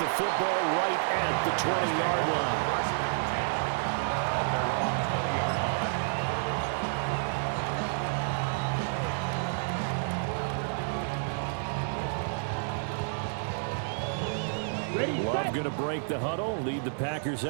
football right at the 20-yard line. They're going to break the huddle, lead the Packers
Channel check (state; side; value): silent; left; 58 dB below the other